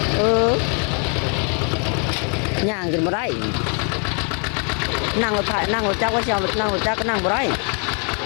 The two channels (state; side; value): quieter; right; 39.3 dB